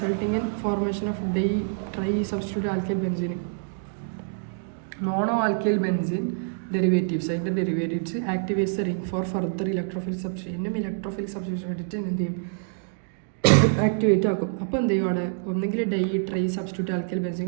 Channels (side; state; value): left; silent; digital silence